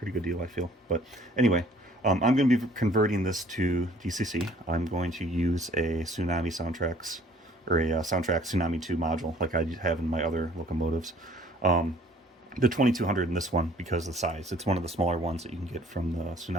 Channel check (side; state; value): both; normal; correlation 0.56